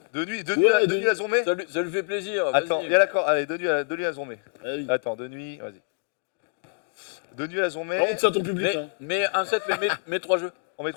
De nuit à Zombé? Ça lui fait plaisir. Attends, il y a l'accord. Allez, de nuit à Zombé. Ah oui. Attends, de nuit, vas-y. De nuit à Zombé. Par contre, c'est à ton public. Hein. Mais un set, mais 3 jeux. On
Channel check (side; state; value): right; silent; digital silence